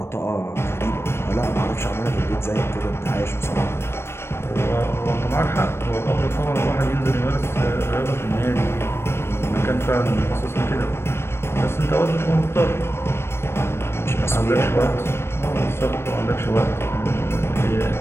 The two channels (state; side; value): late; right; 0.12 ms